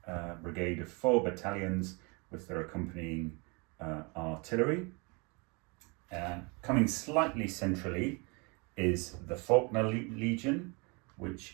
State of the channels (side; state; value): left; quieter; 30.3 dB